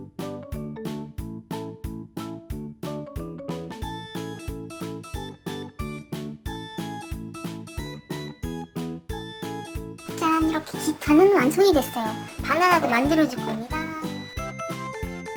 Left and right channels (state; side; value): identical; both; correlation 1.00